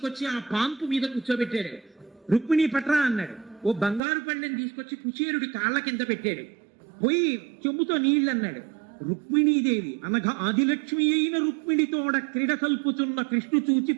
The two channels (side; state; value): left; drops out; at 4.0 s